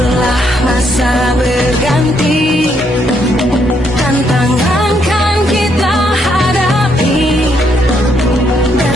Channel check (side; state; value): both; normal; correlation 0.74